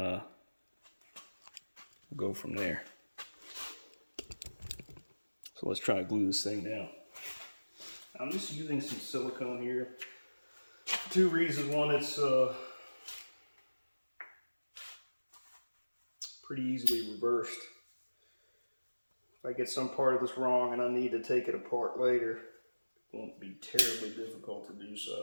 go from there. So let's try to glue this thing down. I'm just using some silicone here. Two reasons. One, it's pretty easily reversed. If I get some part of this wrong and I need to take it apart later, it won't be terribly difficult to do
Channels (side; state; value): both; inverted; correlation -1.00